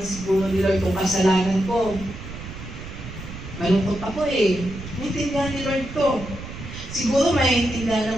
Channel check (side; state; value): right; noise; rumble, 11 dB below the sound